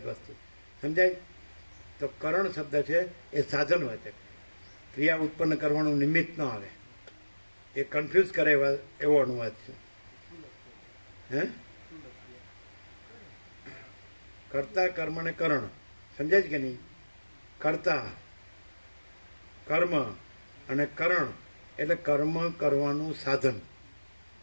વસ્તુ. સમજાય? તો કરણ શબ્દ છે એ સાધન હોય છે. ક્રિયા ઉત્પન્ન કરવાનું નિમિત્ત ન આવે. એ કન્ફ્યુઝ કરે એવો અનુવાદ છે. હે? કર્તા, કર્મ ને કરણ. સમજાય છે કે નહીં? કર્તા, કર્મ અને કરણ એટલે કર્મ કરવાનું સાધન.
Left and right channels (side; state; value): both; inverted; correlation -1.00